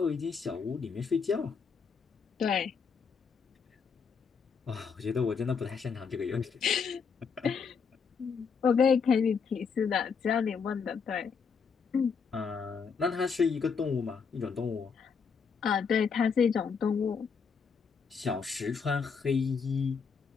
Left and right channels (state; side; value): quieter; right; 5.8 dB